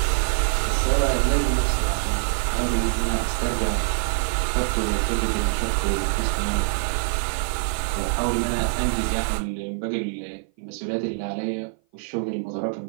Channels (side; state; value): left; silent; 56 dB below the other